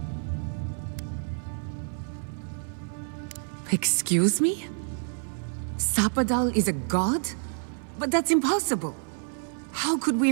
Excuse me? Sapadal is a god? But that's impossible. How could we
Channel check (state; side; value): silent; left; 59 dB below the other